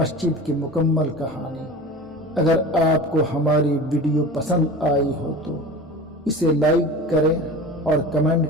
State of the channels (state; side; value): normal; both; correlation 0.35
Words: کی مکمل کہانی۔ اگر آپ کو ہماری ویڈیو پسند آئی ہو تو اسے لائک کریں اور